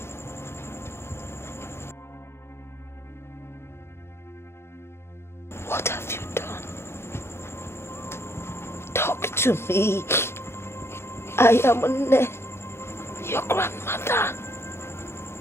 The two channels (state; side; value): late; right; 0.12 ms